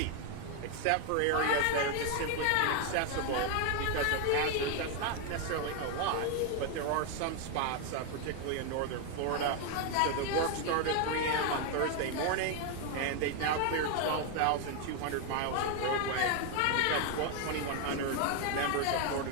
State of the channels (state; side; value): different; both; correlation 0.01